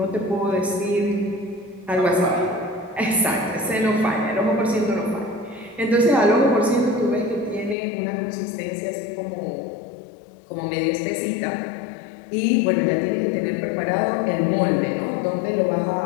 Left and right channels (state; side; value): drops out; right; at 7.8 s